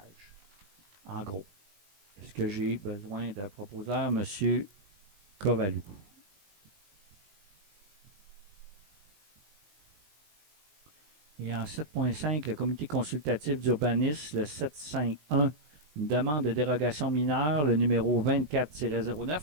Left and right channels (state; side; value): late; left; 20 ms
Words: En gros. Est-ce que j'ai besoin d'un proposeur, M. Kovalou? Et en 7.5, le comité consultatif d'urbanisme, le 751, une demande de dérogation mineure, le numéro 24-09,